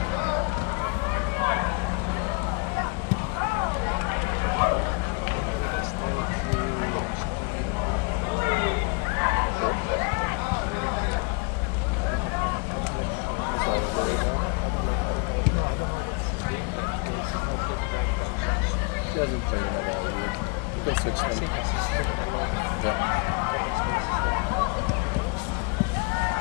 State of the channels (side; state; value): right; quieter; 31.5 dB